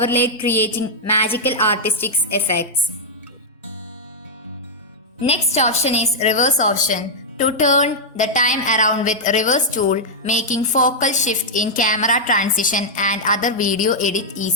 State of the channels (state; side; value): normal; both; correlation -0.06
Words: creating magical artistic effects. Next option is reverse option. To turn the time around with reverse tool, making focal shift in camera transition and other video edit